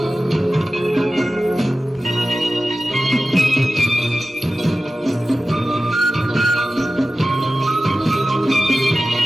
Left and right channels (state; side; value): normal; both; correlation 0.94